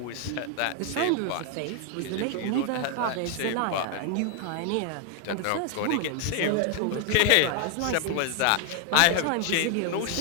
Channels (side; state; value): both; different; correlation 0.00